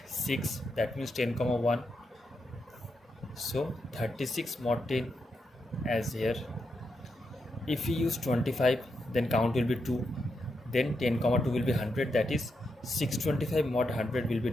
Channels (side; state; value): both; normal; correlation 0.84